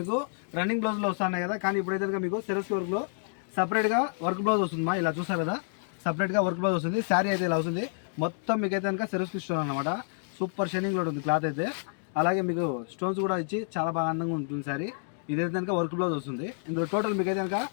రన్నింగ్ బ్లౌజ్ లో వస్తున్నాయి కదా, కానీ ఇప్పుడైతే మీకు సేల్స్ కి వర్క్ లో సపరేట్ గా వర్క్ బ్లౌజ్ వస్తుంది. ఇలా చూసారు కదా, సపరేట్ గా వర్క్ బ్లౌజ్ వస్తుంది. శారీ అయితే ఇలా వస్తుంది. మొత్తం మీకు అయితే కనుక సెరస్ కి ఇస్తున్నాను అనమాట. సూపర్ షైనింగ్ లో ఉంటుంది క్లాత్ అయితే. అలాగే మీకు స్టోన్స్ కూడా ఇచ్చి చాలా బాగా అందంగా ఉంటుంది శారీ. ఇదైతే కనుక వర్క్ బ్లౌజ్ వస్తుంది. ఇందులో టోటల్ మీకు అయితే కనుక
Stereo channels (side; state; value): right; silent; digital silence